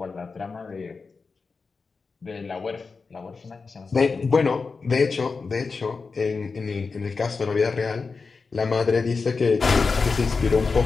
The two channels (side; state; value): right; quieter; 4.6 dB